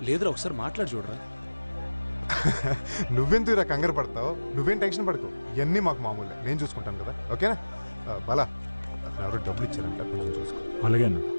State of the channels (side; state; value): both; inverted; correlation -1.00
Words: లేదురా ఒకసారి మాట్లాడి చూడరా. నువ్వెందుకురా కంగారు పడతావు, నువ్వేం టెన్షన్ పడకు, ఇవన్నీ మాకు మామూలే, నేను చూసుకుంటాను కదా. ఓకేనా బాలా, ఎవరో డబ్బులు ఇచ్చారంట, కొంచెం చూసుకో. అలాగే అన్న.